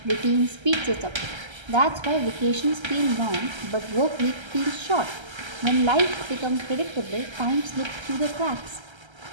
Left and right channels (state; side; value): late; left; 1.3 ms